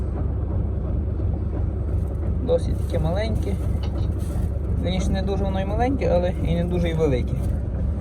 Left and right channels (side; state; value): both; identical; correlation 1.00